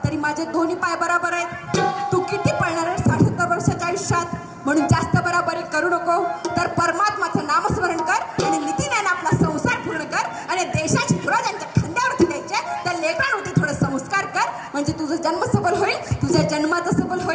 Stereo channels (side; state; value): both; identical; correlation 1.00